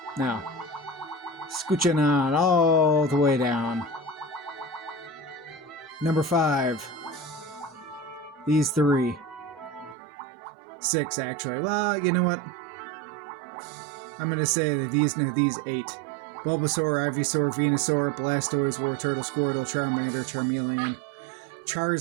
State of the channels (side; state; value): left; drops out; at 10.0 s